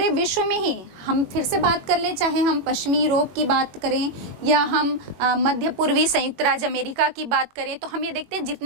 विश्व में ही, हम फिर से बात कर लें, चाहे हम पश्चिमी यूरोप की बात करें या हम मध्य पूर्वी संयुक्त राज्य अमेरिका की बात करें, तो हम ये देखते हैं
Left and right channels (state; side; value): late; left; 21 ms